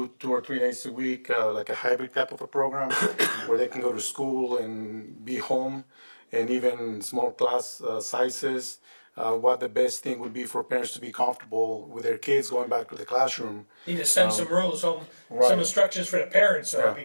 or 3 days a week, like a hybrid type of a program, where they can go to school and be home, and even small class sizes. What the best thing would be for parents to be comfortable with their kids going back to the classroom. Need to send some rules home, right. some instructions for the parents, though, Yeah.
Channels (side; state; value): both; inverted; correlation -1.00